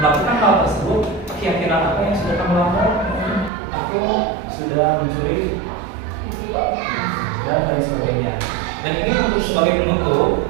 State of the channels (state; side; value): drops out; left; at 3.5 s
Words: hal tersebut, keyakinan apa yang sudah kamu lakukan? Aku sudah mencuri dan lain sebagainya. Dan ini untuk sebagai penutup